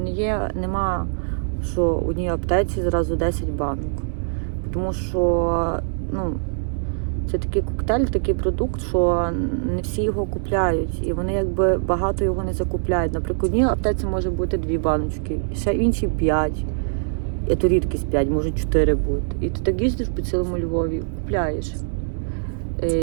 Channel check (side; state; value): left; silent; digital silence